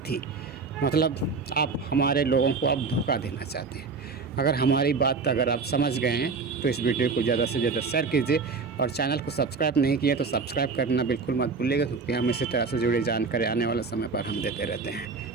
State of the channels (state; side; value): quieter; left; 4.6 dB